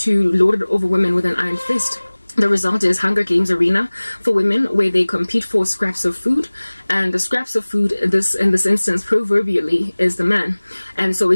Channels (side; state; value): both; inverted; correlation -1.00